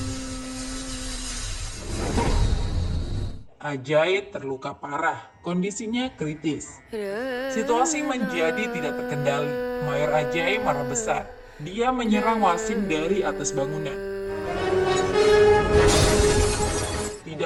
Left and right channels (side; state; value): both; identical; correlation 1.00